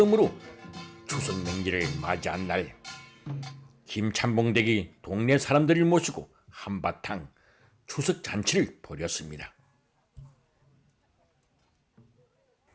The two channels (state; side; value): identical; both; correlation 1.00